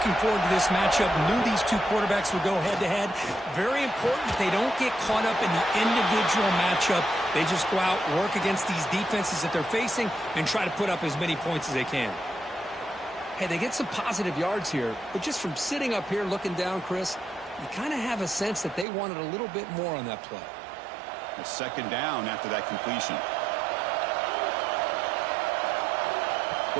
forward to this matchup. Knew these two quarterbacks would go head-to-head. Very important they don't get caught up in the individual matchup. They just go out, work against these defenses that they're facing, and try to put up as many points as they can. Hey, they get some positive yards here, but just from sitting up here looking down, Chris, you kind of have a sense that they wanted a little bit more on that play. A second down after that completion.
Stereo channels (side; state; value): left; drops out; at 18.9 s